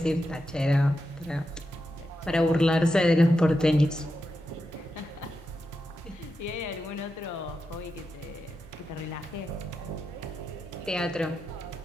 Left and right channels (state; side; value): normal; both; correlation 0.88